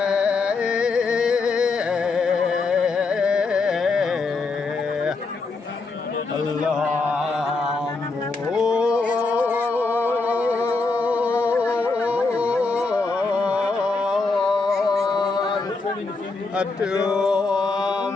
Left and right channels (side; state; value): right; quieter; 3.9 dB